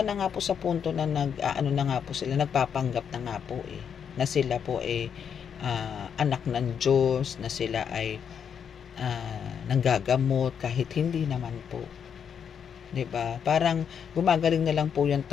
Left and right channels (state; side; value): quieter; right; 7.6 dB